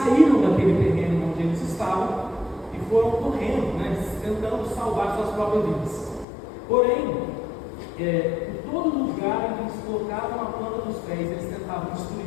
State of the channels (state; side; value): drops out; right; at 6.2 s